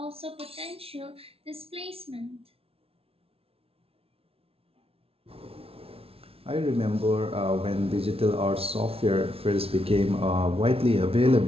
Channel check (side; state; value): left; late; 0.28 ms